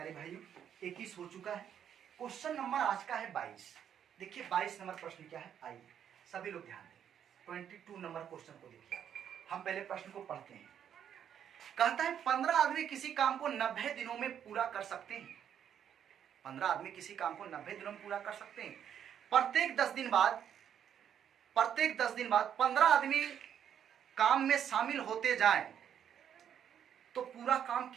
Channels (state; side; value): quieter; left; 9.1 dB